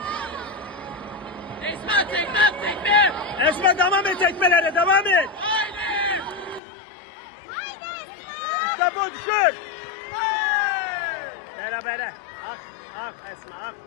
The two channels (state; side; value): drops out; right; at 6.6 s